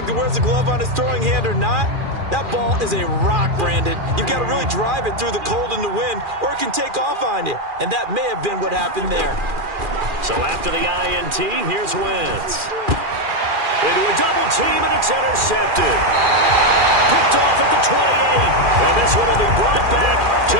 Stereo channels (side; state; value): left; late; 2.4 ms